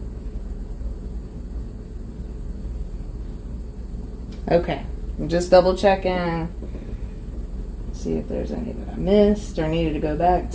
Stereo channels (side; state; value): both; identical; correlation 1.00